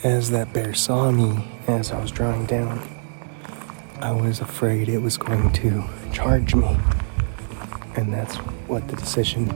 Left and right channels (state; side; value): silent; left; digital silence